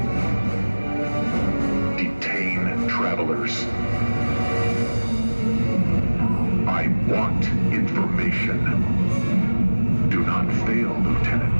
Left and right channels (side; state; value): both; inverted; correlation -1.00